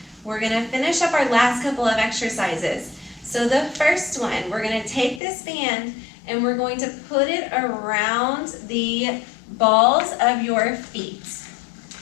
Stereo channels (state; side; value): drops out; right; at 5.2 s